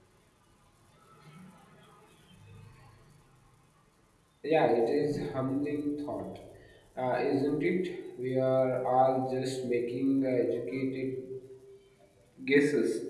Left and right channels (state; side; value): identical; both; correlation 1.00